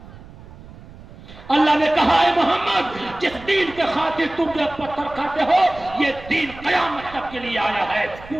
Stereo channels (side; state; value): right; noise; rumble, 18 dB below the sound